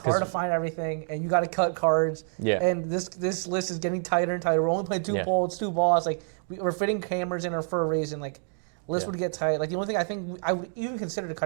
to find everything, and you got to cut cards. Yeah. And this list is getting tighter and tighter. We're only playing 2 Yeah. polls, 2 balls. Like we're fitting cameras in her for a reason. Like, list would get tight. Like the only thing I think I would even consider to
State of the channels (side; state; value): left; silent; 60 dB below the other